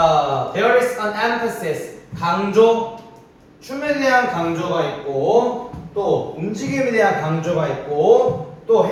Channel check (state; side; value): identical; both; correlation 1.00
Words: there is an emphasis 강조, 춤에 대한 강조가 있고 또 움직임에 대한 강조가 있고 또